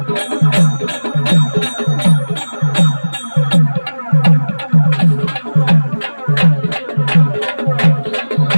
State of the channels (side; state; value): both; inverted; correlation -1.00